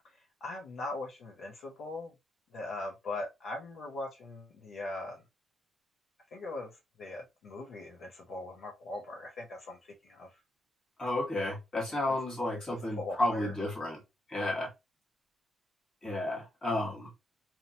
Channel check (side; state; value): both; normal; correlation 0.80